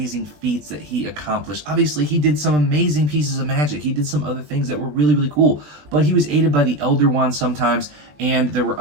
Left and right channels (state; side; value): late; left; 20 ms